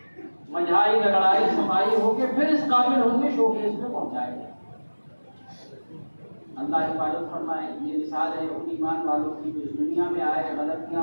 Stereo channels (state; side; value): inverted; both; correlation -1.00